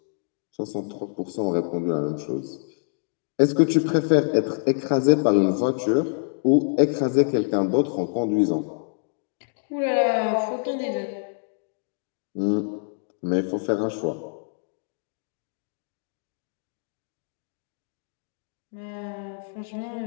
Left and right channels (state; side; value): silent; right; digital silence